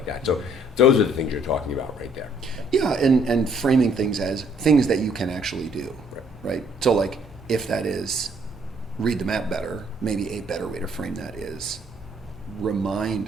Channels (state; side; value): normal; both; correlation 0.64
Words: that. So those are the things you're talking about right there. Yeah, and framing things as things that you can actually do, right? So like, if that is read the map better, maybe a better way to frame that is